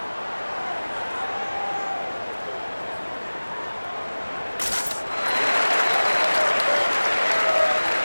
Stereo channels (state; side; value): inverted; both; correlation -1.00